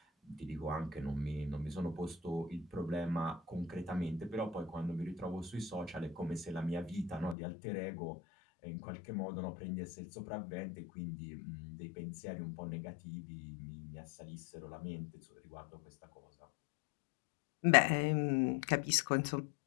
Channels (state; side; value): drops out; right; at 7.4 s